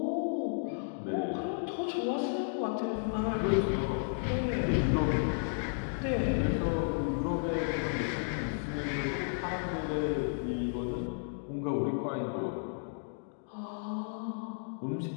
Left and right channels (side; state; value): right; silent; digital silence